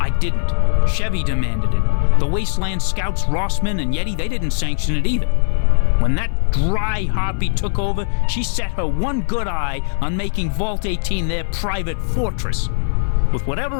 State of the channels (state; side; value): silent; right; 57 dB below the other